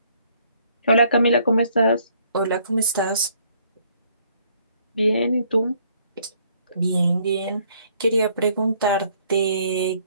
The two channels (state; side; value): inverted; both; correlation -0.65